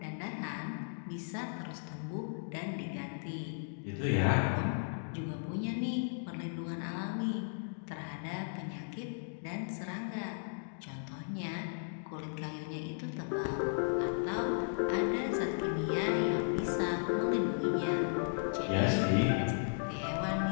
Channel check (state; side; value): silent; right; digital silence